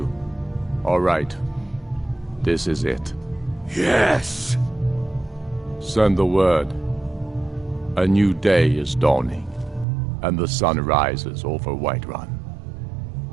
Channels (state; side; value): drops out; left; at 9.9 s